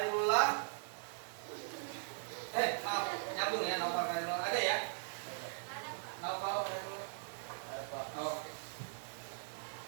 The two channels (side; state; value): left; silent; digital silence